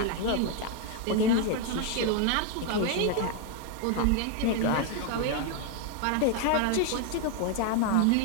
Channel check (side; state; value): both; different; correlation 0.01